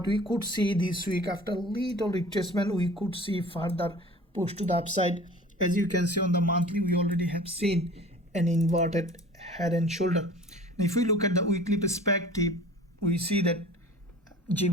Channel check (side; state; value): both; normal; correlation 0.44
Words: we could see this week, after little retracement, we could see further push to the upside. As you can see on the monthly, we already have seen an inverted head and shoulder. And if we look at the weekly perspective, we see that